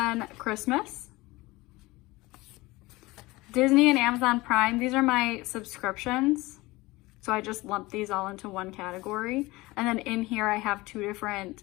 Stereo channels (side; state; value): right; quieter; 20.9 dB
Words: Christmas. Disney and Amazon Prime, these are my subscriptions. So I just lump these all into one category. And then in here I have two different